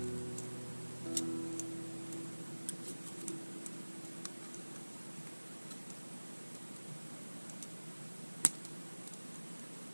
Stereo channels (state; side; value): inverted; both; correlation -1.00